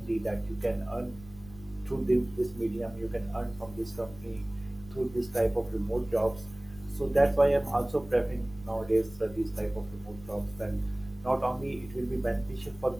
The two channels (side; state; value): left; noise; rumble, 19 dB below the sound